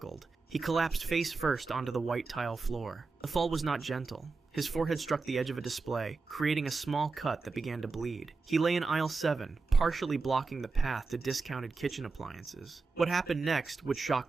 He collapsed face first onto the white tile floor. The fall was not gentle. His forehead struck the edge of a display, creating a small cut that began to bleed. He lay in aisle 7, partially blocking the path to discounted kitchen appliances. What happened next would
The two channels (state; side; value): quieter; left; 4.2 dB